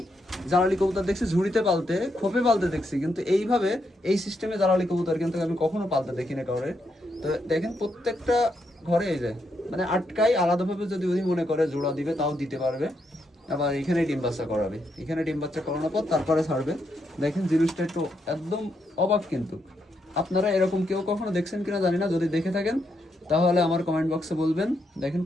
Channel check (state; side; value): normal; both; correlation 0.80